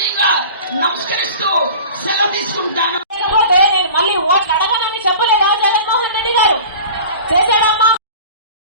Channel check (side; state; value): both; inverted; correlation -0.40